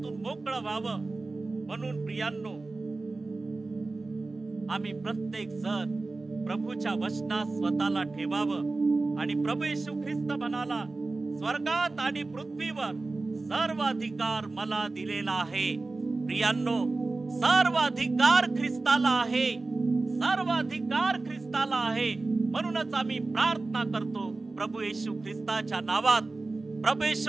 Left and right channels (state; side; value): quieter; left; 3.4 dB